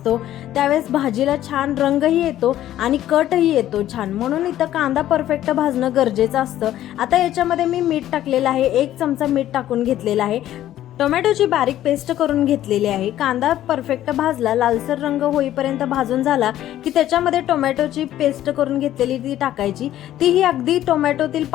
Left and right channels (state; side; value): quieter; right; 12.8 dB